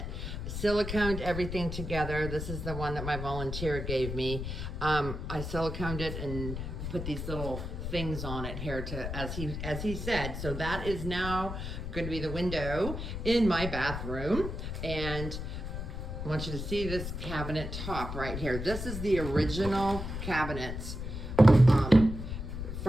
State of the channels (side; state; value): left; noise; rumble, 5 dB below the sound